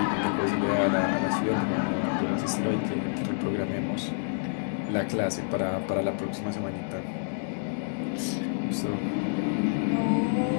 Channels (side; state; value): right; silent; digital silence